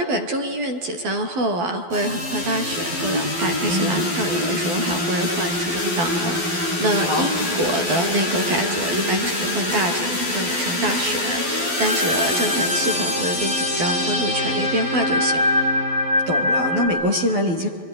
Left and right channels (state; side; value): late; left; 12 ms